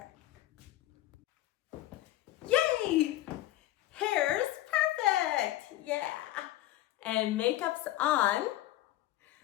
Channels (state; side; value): quieter; right; 15.0 dB